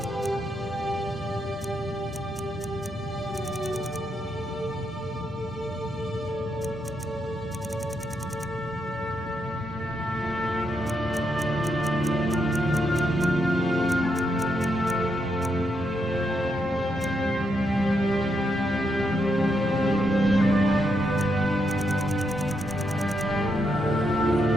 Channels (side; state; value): both; normal; correlation 0.80